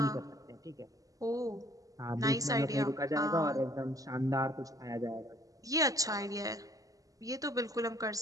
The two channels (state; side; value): late; left; 0.17 ms